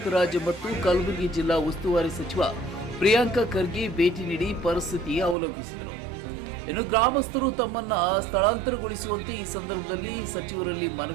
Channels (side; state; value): left; drops out; at 5.4 s